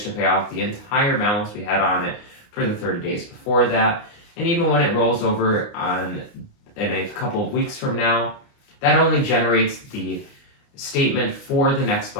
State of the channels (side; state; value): right; late; 29 ms